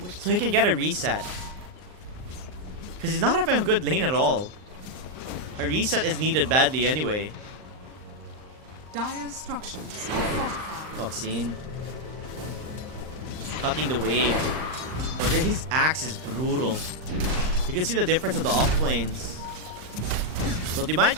so he can get a reset. Because he's not having a good lane at all. A reset is needed badly anyway. Dire's structures are fortified. Oxine. Cutting the wave. Oh, his axe is brutal. You can see the difference of the off lanes. So they might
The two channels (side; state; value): left; late; 39 ms